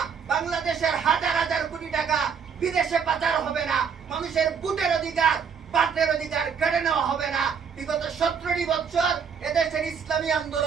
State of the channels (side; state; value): left; quieter; 6.6 dB